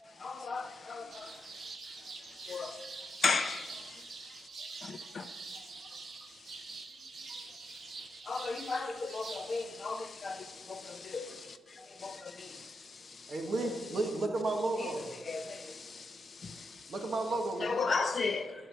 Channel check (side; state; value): both; normal; correlation 0.85